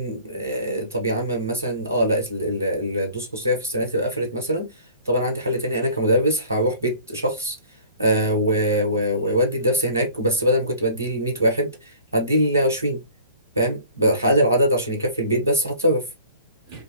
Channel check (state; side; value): inverted; both; correlation -0.48